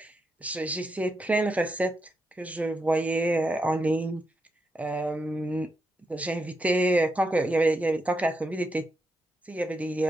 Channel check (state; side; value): normal; both; correlation 0.83